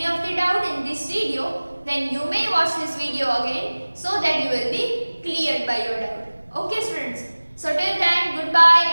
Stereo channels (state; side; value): inverted; both; correlation -1.00